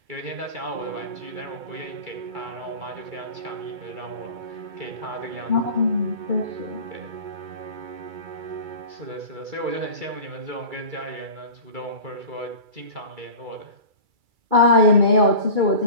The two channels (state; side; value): late; left; 2.3 ms